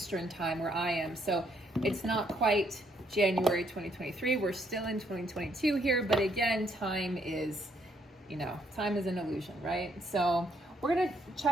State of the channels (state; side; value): normal; both; correlation 0.71